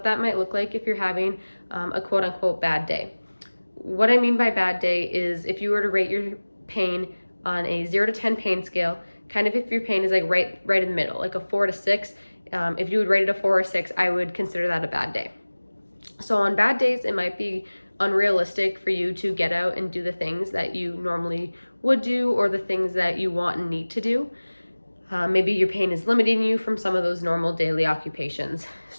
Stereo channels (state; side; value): inverted; both; correlation -1.00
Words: that might look like if you're having a quote-unquote bad day. What I mean by bad day is if you were to rate your pain on a 0 to 10 pain scale, kind of if your pain is like right in the middle, like a 4 to 6, if you would rate it a 4 or 6, I would consider that a bad day. So on bad days, it might be unrealistic for you to get out and do the things that you normally would do or the things that you want and need to do. Maybe your pain is limiting you from some of those normal daily occupations.